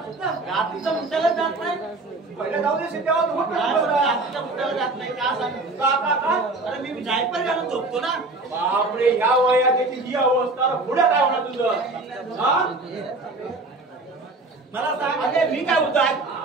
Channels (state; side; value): quieter; left; 3.1 dB